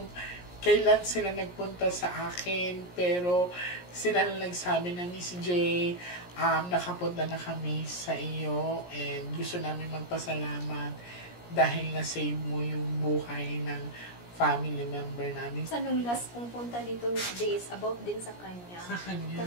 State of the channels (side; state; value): right; late; 17 ms